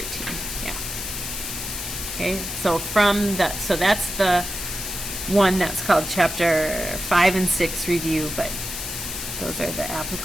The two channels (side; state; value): left; noise; hiss, 6 dB below the sound